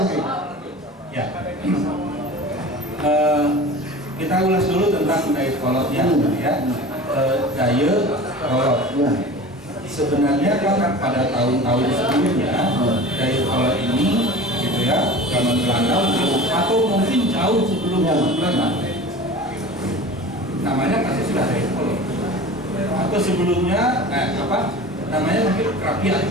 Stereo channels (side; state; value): both; normal; correlation 0.37